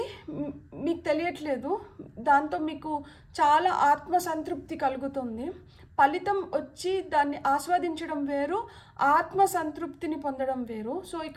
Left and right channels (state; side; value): identical; both; correlation 1.00